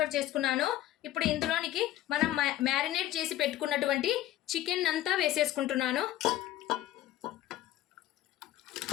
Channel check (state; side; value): quieter; right; 14.0 dB